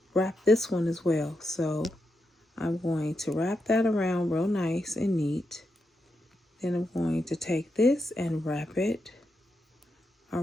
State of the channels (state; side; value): normal; both; correlation 0.85